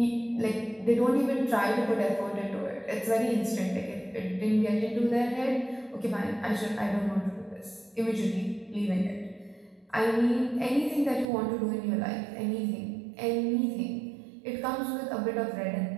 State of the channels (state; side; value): drops out; left; at 11.2 s